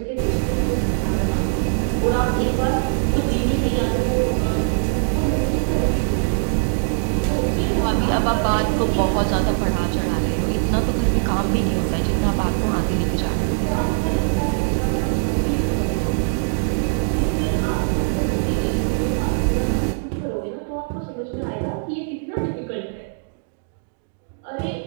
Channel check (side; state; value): left; silent; 65 dB below the other